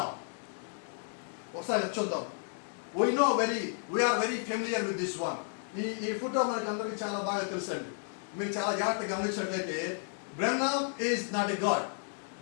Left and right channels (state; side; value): silent; right; 56 dB below the other